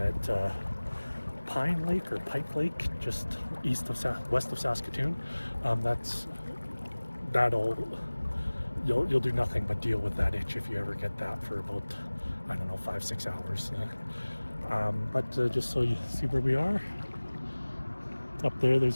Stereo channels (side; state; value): both; inverted; correlation -1.00